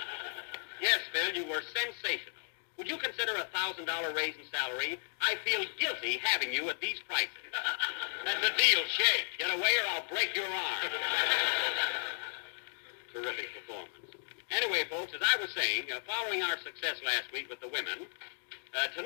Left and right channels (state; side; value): silent; right; digital silence